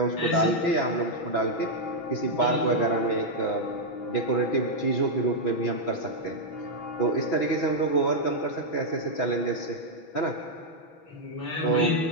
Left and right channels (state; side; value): late; right; 6.1 ms